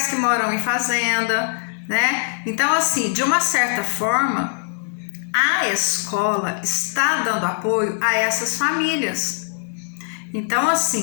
que moram em fazenda, né? Então, assim, de uma certa forma, a escola está dando apoio a essas famílias. Então,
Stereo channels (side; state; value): right; silent; digital silence